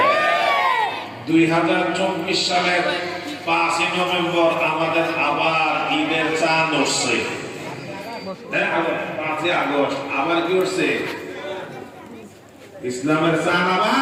2024 সালের 5 নভেম্বর আমাদের আবার ঈদের চাঁদ উঠছে। 5 আগস্ট আবার কি উঠছে? ইসলামের চাঁদ আবার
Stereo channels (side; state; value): both; identical; correlation 1.00